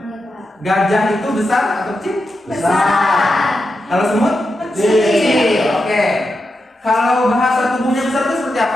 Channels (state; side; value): normal; both; correlation 0.88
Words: Gajah itu besar atau kecil? Besar. Kalau semut? Kecil. Oke. Kalau bahasa tubuhnya besar itu seperti